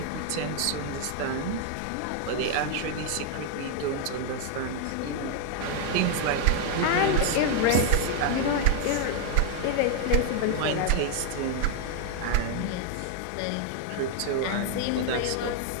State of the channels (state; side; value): different; both; correlation 0.00